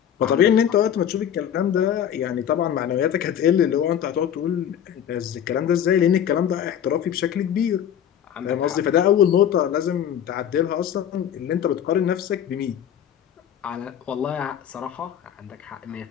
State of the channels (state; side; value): quieter; right; 9.5 dB